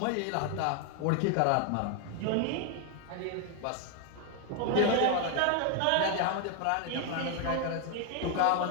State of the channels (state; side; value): different; both; correlation 0.00